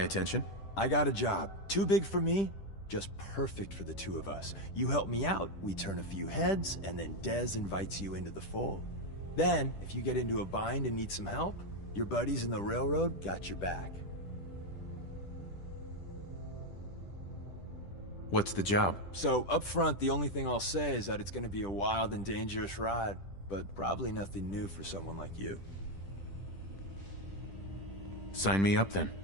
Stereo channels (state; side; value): late; right; 10 ms